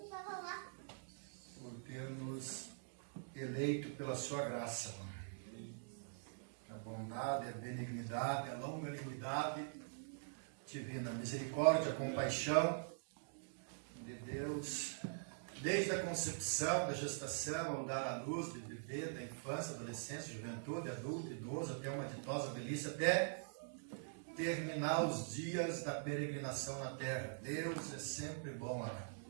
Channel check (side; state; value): left; silent; digital silence